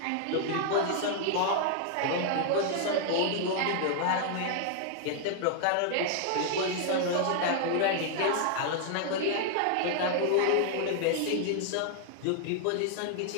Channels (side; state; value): both; different; correlation 0.00